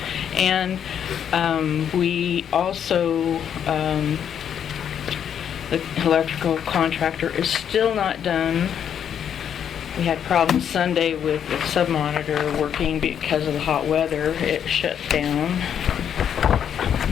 And we also, the electrical contractor is still not done. We had problems Sunday with the sub-monitor working because of the hot weather. It shut down.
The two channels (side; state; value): right; quieter; 8.7 dB